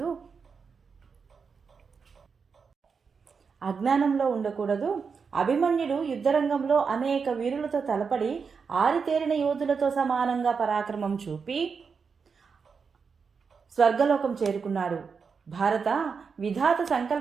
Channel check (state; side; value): quieter; left; 5.6 dB